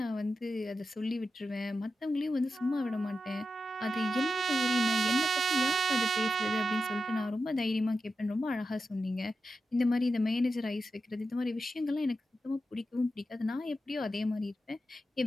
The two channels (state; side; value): normal; both; correlation 0.89